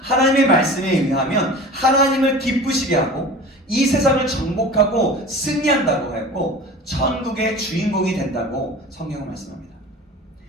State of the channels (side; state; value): both; normal; correlation 0.38